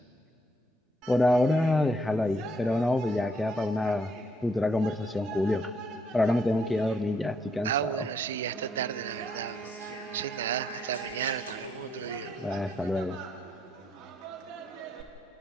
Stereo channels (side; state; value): both; normal; correlation 0.72